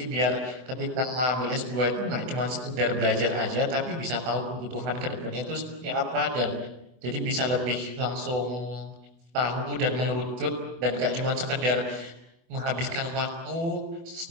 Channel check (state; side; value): late; left; 24 ms